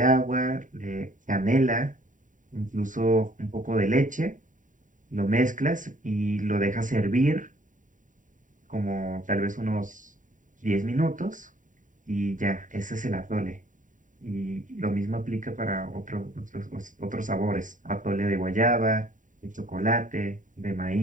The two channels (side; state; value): left; late; 0.38 ms